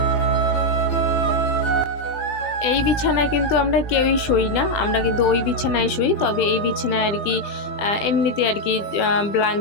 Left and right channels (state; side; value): late; right; 20 ms